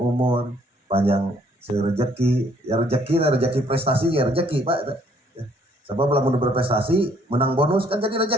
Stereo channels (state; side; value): normal; both; correlation 0.64